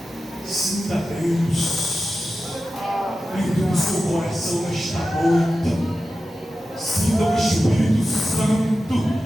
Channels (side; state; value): both; normal; correlation 0.93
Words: Sinta Deus dentro do seu coração nesta noite. Sinta o Espírito Santo